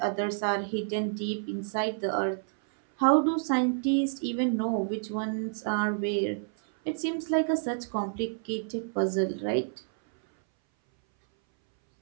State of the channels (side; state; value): left; silent; 59 dB below the other